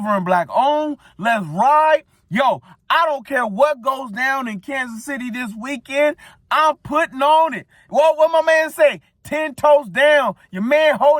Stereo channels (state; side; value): identical; both; correlation 1.00